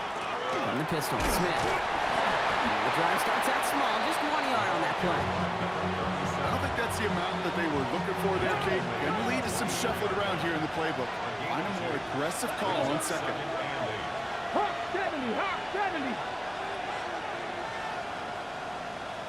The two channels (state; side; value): identical; both; correlation 1.00